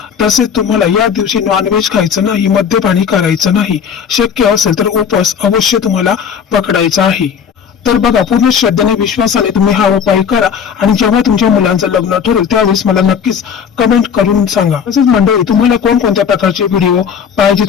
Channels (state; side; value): quieter; right; 7.3 dB